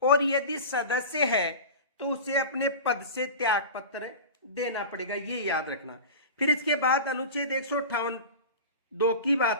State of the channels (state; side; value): inverted; both; correlation -0.30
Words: और यदि सदस्य है तो उसे अपने पद से त्याग पत्र देना पड़ेगा, ये याद रखना। फिर इसके बाद अनुच्छेद 158(2) की